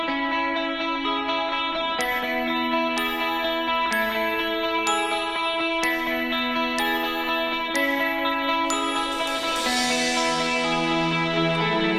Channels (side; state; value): both; identical; correlation 1.00